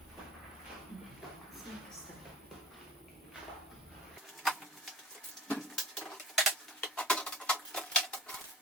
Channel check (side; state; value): both; normal; correlation 0.42